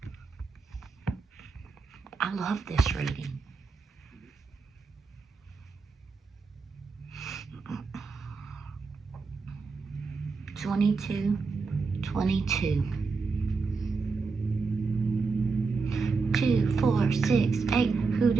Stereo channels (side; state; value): left; quieter; 4.5 dB